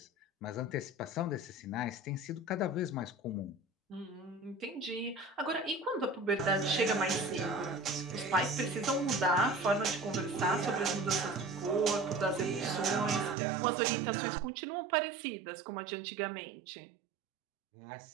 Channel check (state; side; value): drops out; left; at 13.4 s